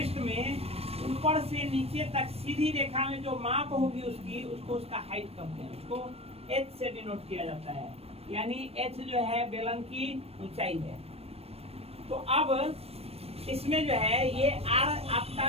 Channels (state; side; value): late; left; 0.29 ms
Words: में ऊपर से नीचे तक सीधी रेखा में जो माप होगी उसकी, उसको उसका हाइट कहते हैं, उसको h से डिनोट किया जाता है। यानी h जो है बेलन की ऊंचाई है। तो अब इसमें जो है ये r